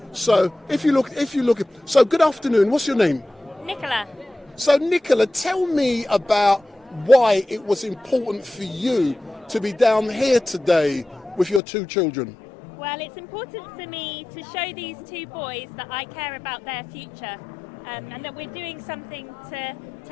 So if you look, so good afternoon. What's your name? Nicola. So Nicola, tell me about why it was important for you to be down here today with your two children. Well, it's important for me to show these two boys that I care about their future, and that we're doing something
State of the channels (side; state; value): right; drops out; at 11.6 s